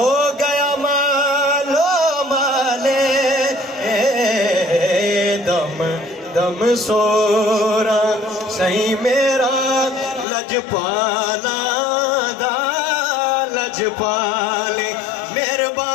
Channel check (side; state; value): right; drops out; at 10.2 s